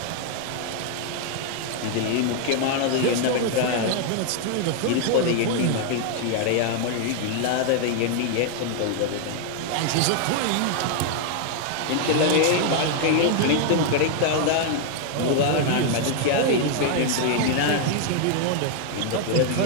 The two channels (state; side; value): different; both; correlation 0.00